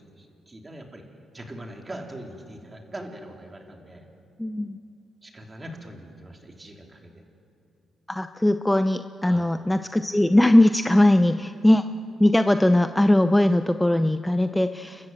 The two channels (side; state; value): both; normal; correlation 0.98